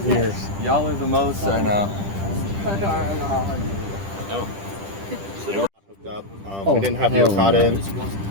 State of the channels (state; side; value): late; left; 10 ms